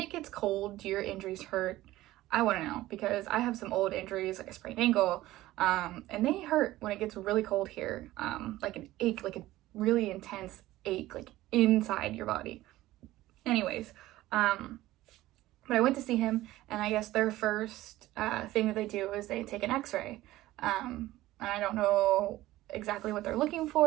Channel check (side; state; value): left; quieter; 16.4 dB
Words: gets cold, do your injuries hurt? I want to know, because I have some old injuries, like a sprained ankle, and they hurt when it gets really cold here, like an ache, like a really intense ache, like inside your body. Anyways, but I went to see him, and I guess their first thing that they do is they take an x-ray, and I don't know exactly what they're looking